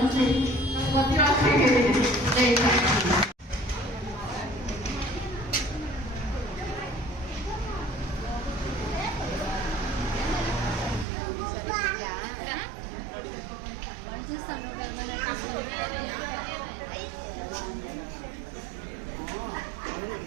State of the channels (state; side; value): drops out; left; at 11.1 s